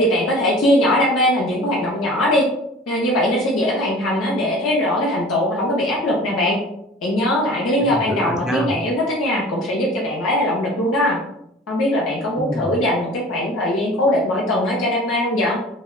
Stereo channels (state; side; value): normal; both; correlation 0.42